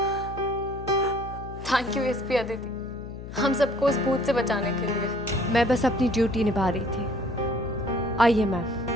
थैंक यू एसपी अदिति, हम सबको उस भूत से बचाने के लिए। मैं बस अपनी ड्यूटी निभा रही थी। आइए मैम।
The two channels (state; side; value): noise; left; hum, 11 dB below the sound